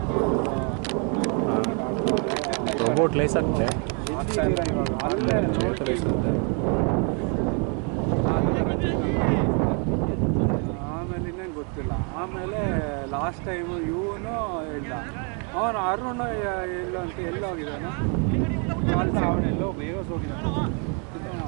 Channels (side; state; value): left; quieter; 37.3 dB